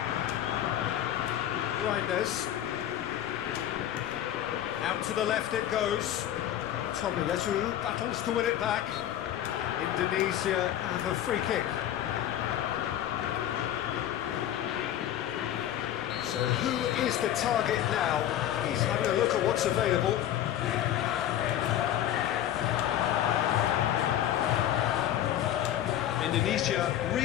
Reinders. Out to the left it goes. Tobiyasu battles to win it back. Indonesia have a free kick. So who is the target now? He's having a look at what's available. Indonesia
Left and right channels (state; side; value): quieter; right; 11.6 dB